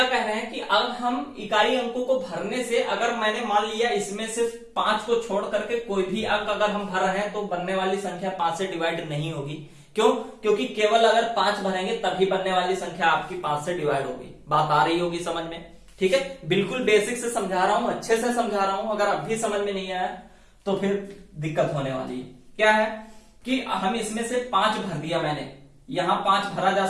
कह रहे हैं कि अब हम इकाई अंकों को भरने से, अगर मैंने मान लिया इसमें से 5 को छोड़ करके कोई भी अंक अगर हम भर रहे हैं तो बनने वाली संख्या 5 से डिवाइड नहीं होगी। क्यों? क्योंकि केवल अगर 5 भरेंगे तभी बनने वाली संख्या आपकी 5 से डिवाइड होगी। बात आ रही होगी समझ में? ठीक है, बिल्कुल बेसिक से समझा रहा हूं, अच्छे से समझा रहा हूं। अगर अब भी समझ में नहीं आया तो फिर दिक्कत होने वाली है। क्या है कि हम इसमें से 5 भर दिया मैंने, यहां 5 भरा जा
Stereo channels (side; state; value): both; identical; correlation 1.00